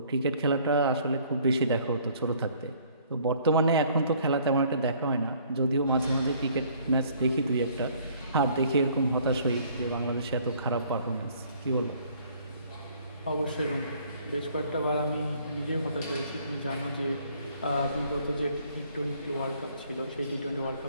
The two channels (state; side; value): inverted; both; correlation -0.59